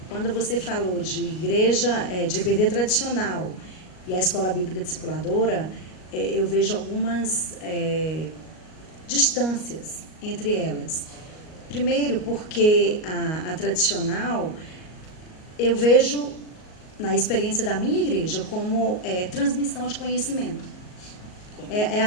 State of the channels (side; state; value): right; late; 38 ms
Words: quando você falou de igreja, de EBD tradicional e a escola bíblica discipuladora, eu vejo algumas distâncias entre elas. Primeiro, porque a tradicional, eu vejo, na experiência da minha igreja, como transmissão de conhecimento. É